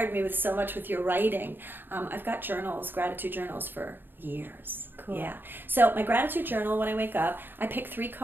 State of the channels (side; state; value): left; late; 0.095 ms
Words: me with so much with your writing. I've got journals, gratitude journals for years. Cool. Yeah. So my gratitude journal, when I wake up, I pick 3